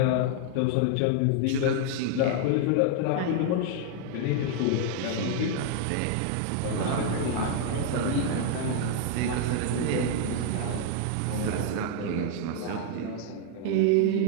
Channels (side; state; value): both; different; correlation 0.00